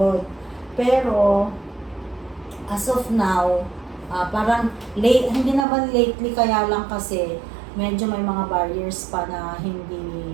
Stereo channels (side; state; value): left; drops out; at 5.7 s